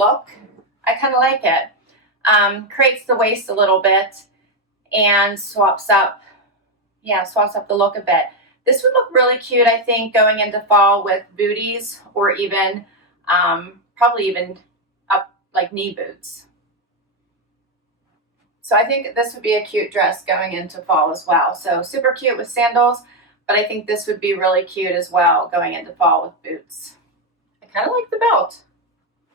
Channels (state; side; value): normal; both; correlation 0.05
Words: I kind of like it. Creates the waist a little bit and swaps up the look a bit. This would look really cute, I think, going into fall with booties or even, probably even up like knee boots. So I think this would be a cute dress going into fall as well. So super cute with sandals, but I think this would be really cute as well going into fall with boots. I kind of like the belt.